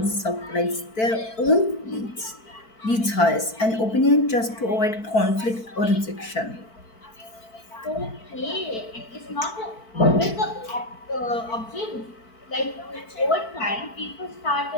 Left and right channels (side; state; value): right; late; 4.5 ms